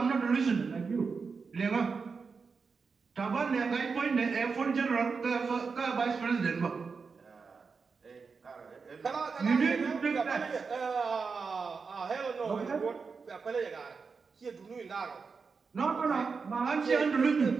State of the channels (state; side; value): quieter; left; 5.1 dB